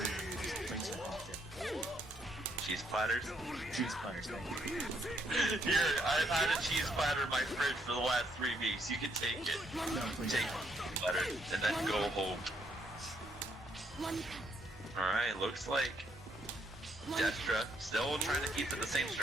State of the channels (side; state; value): both; normal; correlation 0.72